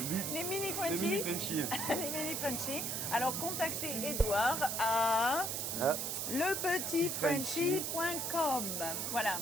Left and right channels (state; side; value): noise; right; hiss, 1 dB below the sound